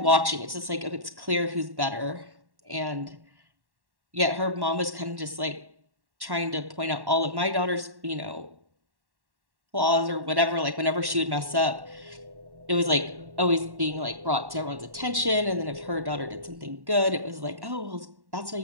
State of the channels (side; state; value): left; late; 1.1 ms